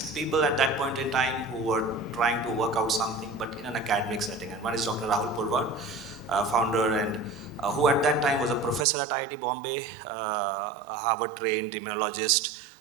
people at that point in time who were trying to work out something, but in an academic setting. And one is Dr. Rahul Verma, founder, and who at that time was a professor at IIT Bombay, a Harvard-trained immunologist,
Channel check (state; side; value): drops out; left; at 8.8 s